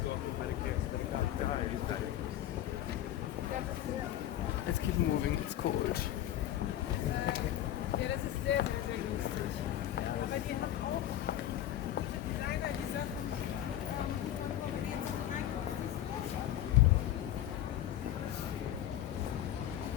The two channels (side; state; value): right; quieter; 12.4 dB